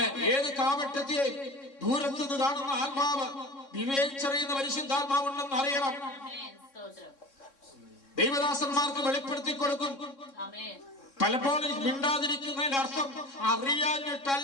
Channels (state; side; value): late; right; 3.6 ms